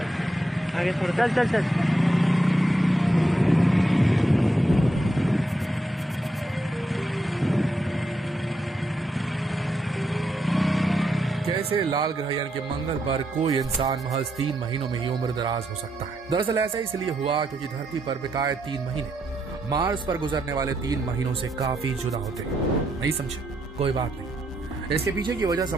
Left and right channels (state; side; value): normal; both; correlation 0.80